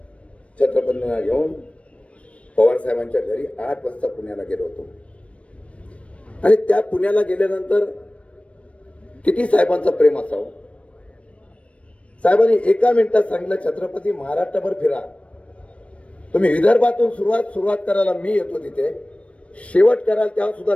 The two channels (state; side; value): late; right; 0.063 ms